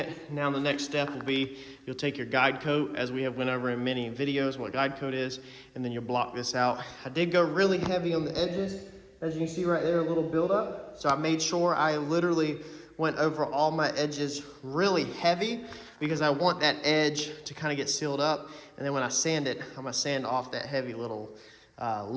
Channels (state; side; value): identical; both; correlation 1.00